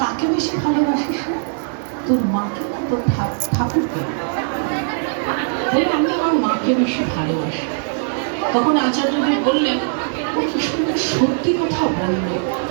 কাকে বেশি ভালোবাসিস? তোর মাকে না তোর ঠাকুরকে? বলে, আমি আমার মাকে বেশি ভালোবাসি। তখন আচার্যজি বললেন, ও কি সুন্দর সত্যি কথা বললো।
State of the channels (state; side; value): silent; left; digital silence